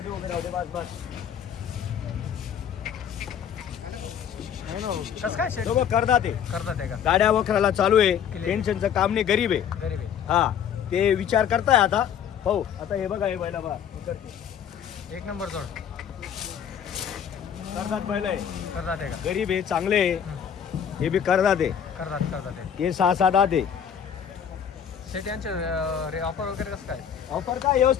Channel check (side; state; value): right; quieter; 8.5 dB